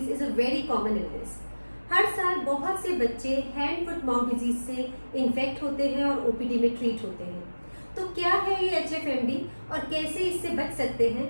is a very common illness. हर साल बहुत से बच्चे हैंड फुट माउथ डिजीज से इन्फेक्ट होते हैं और ओपीडी में ट्रीट होते हैं। तो क्या है ये HFMD और कैसे इससे बच सकते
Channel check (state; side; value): inverted; both; correlation -1.00